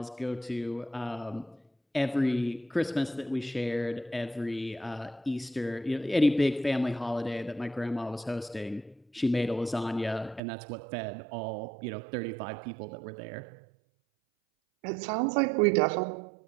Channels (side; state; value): left; drops out; at 10.4 s